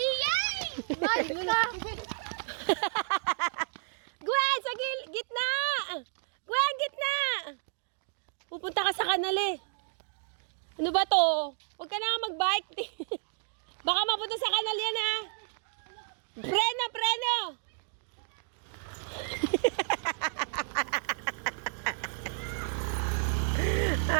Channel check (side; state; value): left; silent; digital silence